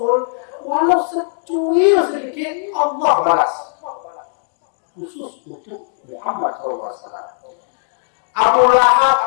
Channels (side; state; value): right; silent; digital silence